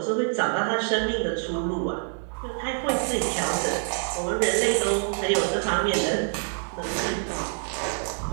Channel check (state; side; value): silent; left; digital silence